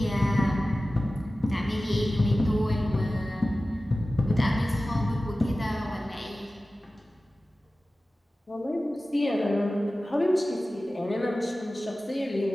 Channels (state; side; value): normal; both; correlation 0.96